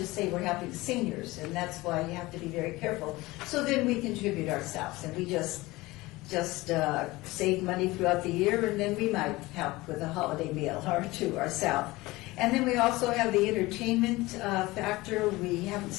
say we're helping seniors, and that's why you have to be very careful. So then we contribute ourselves, and we just save money throughout the year, and then we might help with a holiday meal or two ourselves. And then we also have the entertainment factor. We haven't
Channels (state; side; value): quieter; right; 20.4 dB